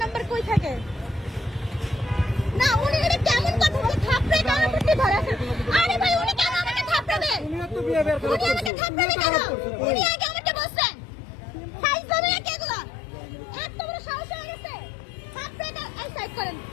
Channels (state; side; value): drops out; right; at 8.7 s